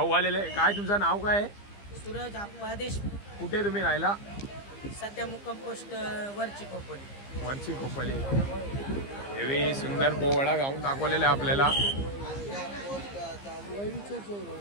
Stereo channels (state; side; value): late; right; 15 ms